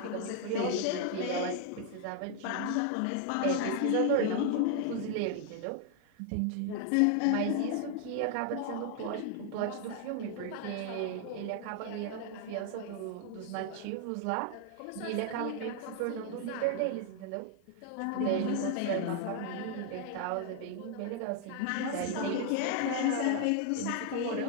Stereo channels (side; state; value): both; different; correlation 0.00